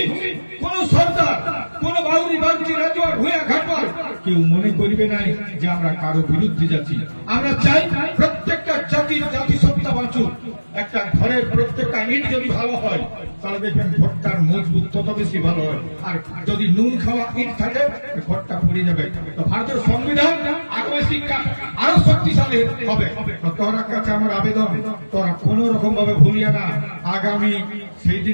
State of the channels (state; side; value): inverted; both; correlation -1.00